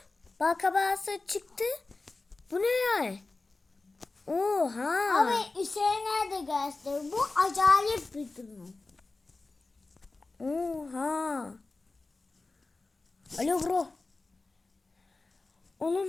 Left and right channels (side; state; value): right; quieter; 3.5 dB